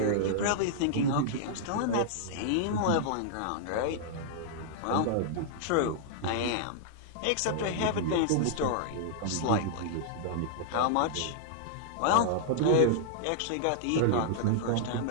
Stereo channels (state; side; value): different; both; correlation -0.01